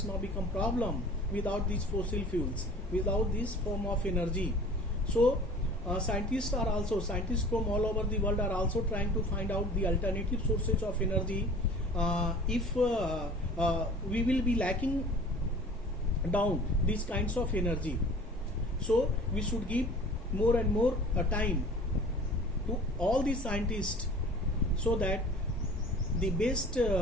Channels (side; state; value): both; normal; correlation 0.45